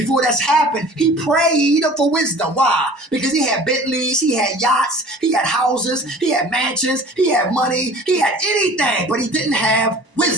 that's happened, he prayed for wisdom. Why? Because he had Bentleys, he had yachts, he had houses, he had mansions, he had money, he had anything, but he didn't have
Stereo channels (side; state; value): left; late; 1.0 ms